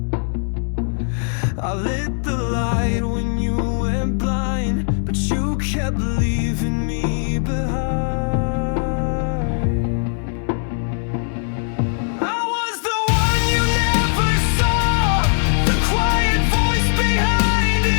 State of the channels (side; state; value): right; silent; digital silence